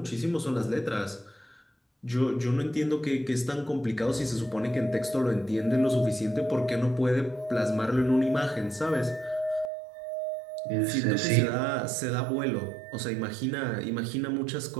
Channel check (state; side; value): drops out; left; at 9.7 s